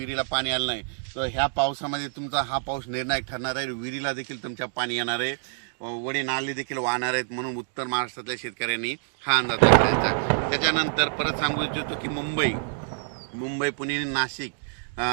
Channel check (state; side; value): silent; left; digital silence